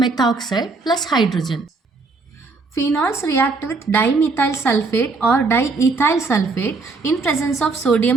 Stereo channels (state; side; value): quieter; left; 3.9 dB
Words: methoxide plus hydrogen. Phenols react with dimethyl sulfate or diethyl sulfate in presence of